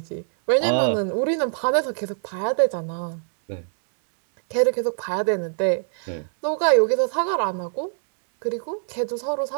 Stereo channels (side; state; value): left; silent; 63 dB below the other